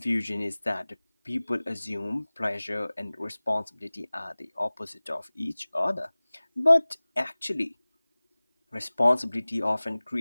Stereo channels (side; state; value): both; inverted; correlation -1.00